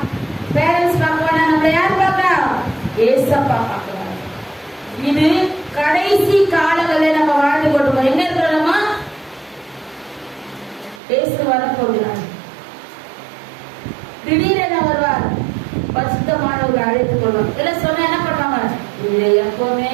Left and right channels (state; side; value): drops out; left; at 11.0 s